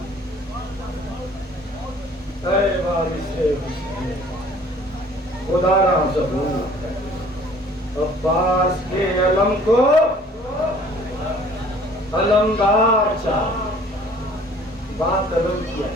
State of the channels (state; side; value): normal; both; correlation 0.53